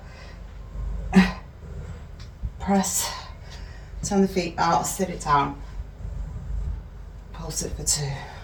press, turn the feet out, sit it down, pulse it for 2.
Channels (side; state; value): both; identical; correlation 1.00